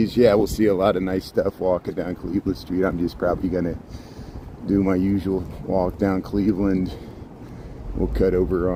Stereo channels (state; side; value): identical; both; correlation 1.00